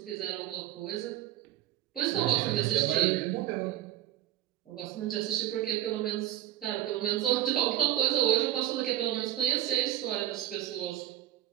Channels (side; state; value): left; quieter; 13.2 dB